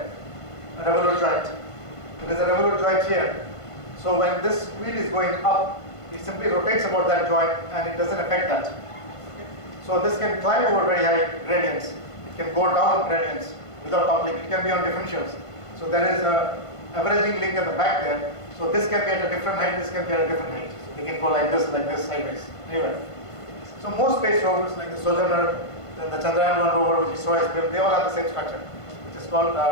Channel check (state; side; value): late; right; 1.5 ms